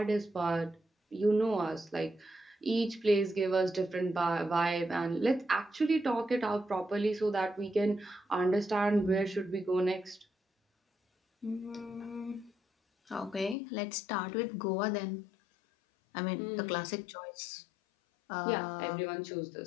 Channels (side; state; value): right; drops out; at 13.6 s